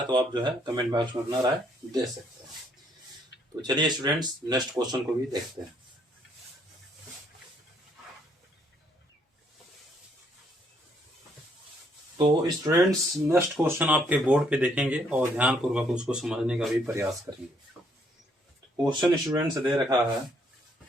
तो आप जो है कमेंट बॉक्स में अपना राय दे सकते हैं। तो चलिए स्टूडेंट्स नेक्स्ट क्वेश्चन को भी देखते हैं। तो स्टूडेंट्स नेक्स्ट क्वेश्चन आपके बोर्ड पे देखेंगे और ध्यान पूर्वक उसको समझने का भी प्रयास करेंगे। क्वेश्चन स्टूडेंट्स दे रखा है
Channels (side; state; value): both; normal; correlation 0.69